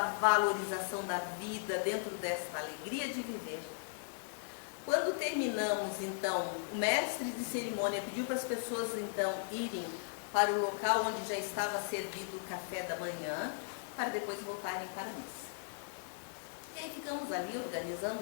valorização da vida, dentro desta alegria de viver. Quando terminamos, então, o mestre de cerimônia pediu para as pessoas, então, irem para o local onde já estava servido o café da manhã, para depois voltarem para a missa. E aí ficamos ali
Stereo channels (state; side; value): silent; right; 53 dB below the other